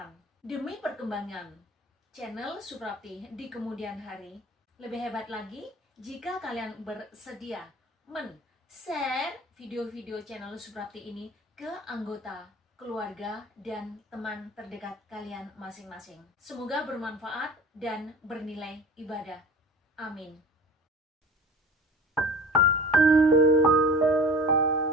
demi perkembangan channel Suprapti di kemudian hari, lebih hebat lagi jika kalian bersedia men-share video-video channel Suprapti ini ke anggota, keluarga, dan teman terdekat kalian masing-masing. Semoga bermanfaat dan bernilai ibadah. Amin.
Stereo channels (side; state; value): both; normal; correlation 0.40